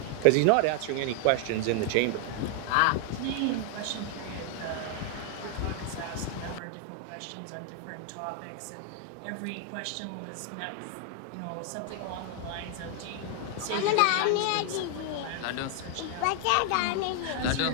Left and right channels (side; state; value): both; different; correlation 0.00